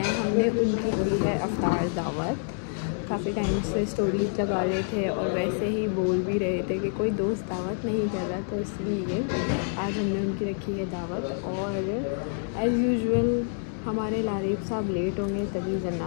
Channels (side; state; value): right; silent; digital silence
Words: हमने उनकी दी है अफ्तार दावत। काफ़ी टाइम से स्टोरीज लगा रहे थे और वैसे ही बोल भी रहे थे कि कोई दोस्त दावत नहीं कर रहा, तो इसलिए आज हमने उनकी रखी है दावत। और एज़ यूजुअल हमारे लारीफ साहब लेट होंगे, तभी